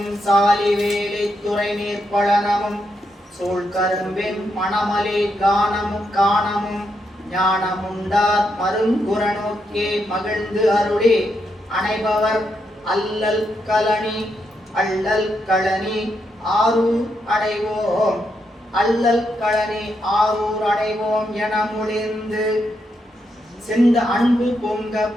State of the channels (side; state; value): both; normal; correlation 0.81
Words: சாலி வேலை துறை நீர் பழனமும் சோழ் கரும்பின் மணமலை காணமும் காணமும் ஞானமுண்டார் மருங்குறநோக்கே மகிழ்ந்து அருளி அணைபவர் அல்லல் களனி ஆரூர் அடைவோம். அல்லல் களனி ஆரூர் அடைவோம் என முழிந்து செந்த அன்பு பொங்க